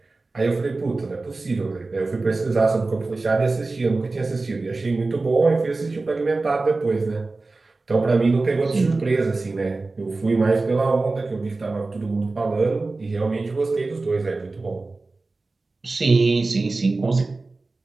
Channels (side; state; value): left; quieter; 3.5 dB